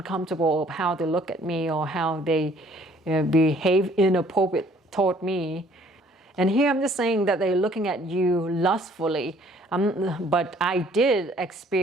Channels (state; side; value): normal; both; correlation 0.59